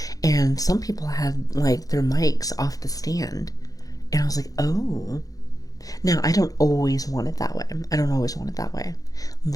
and some people had like their mics off the stand, and I was like, oh. Now, I don't always want it that way. I don't always want it that way,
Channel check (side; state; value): right; late; 0.17 ms